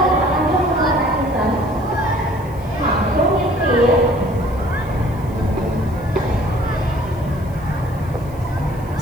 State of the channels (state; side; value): noise; left; hiss, 26 dB below the sound